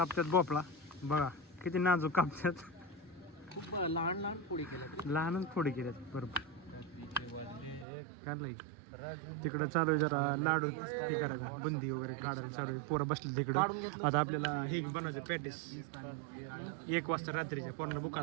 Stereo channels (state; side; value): drops out; left; at 7.9 s